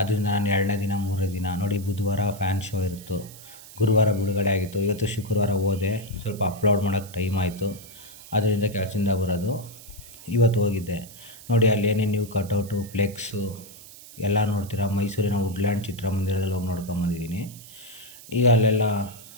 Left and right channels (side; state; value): right; noise; hiss, 18 dB below the sound